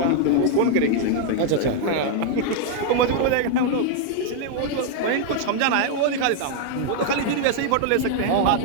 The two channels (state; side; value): different; both; correlation 0.00